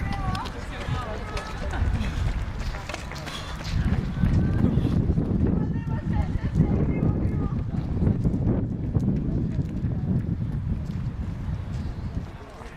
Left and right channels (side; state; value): both; identical; correlation 1.00